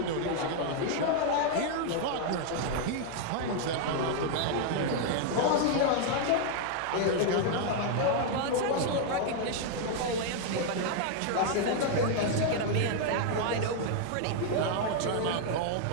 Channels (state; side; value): different; both; correlation 0.00